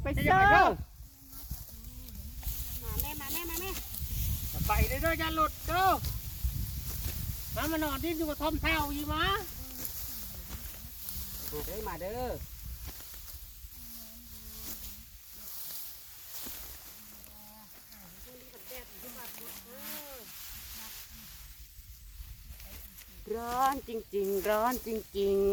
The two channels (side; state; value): both; identical; correlation 1.00